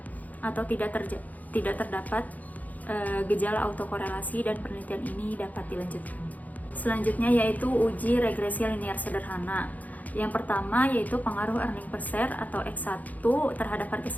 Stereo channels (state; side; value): late; right; 0.079 ms